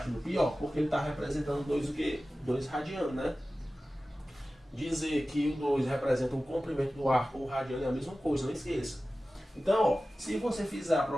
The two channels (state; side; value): normal; both; correlation 0.96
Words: do π, ó, porque ele está representando 2 o quê? 2 radiano, né? Dizer que o 2 representa o comprimento do arco ou o radiano é a mesma coisa, não esqueça. Então, ó, se você fizer a